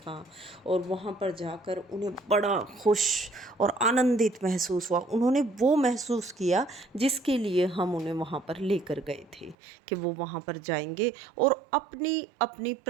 और वहाँ पर जाकर उन्हें बड़ा खुश और आनंदित महसूस हुआ। उन्होंने वो महसूस किया जिसके लिए हम उन्हें वहाँ पर लेकर गए थे, कि वो वहाँ पर जाएंगे और अपनी अपनी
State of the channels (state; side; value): drops out; left; at 9.6 s